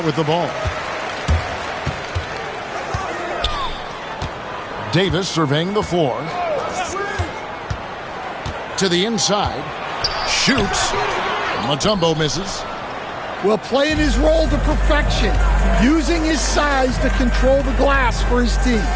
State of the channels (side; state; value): both; identical; correlation 1.00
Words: with the ball. Davis surveying the floor. To the inside. Shoots. Mutombo misses. Well, playing his role to perfection. Using his size to control the glass for his team.